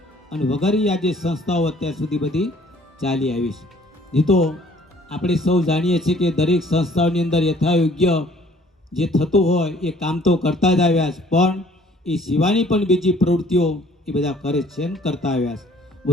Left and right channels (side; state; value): both; normal; correlation 0.57